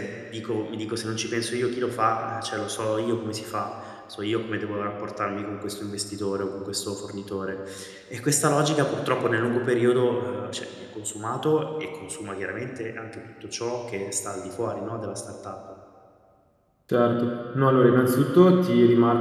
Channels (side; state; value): both; identical; correlation 1.00